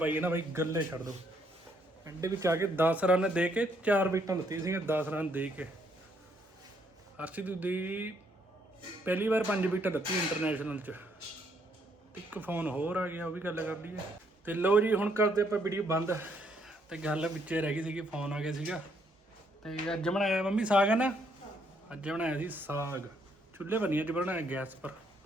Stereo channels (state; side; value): normal; both; correlation 0.71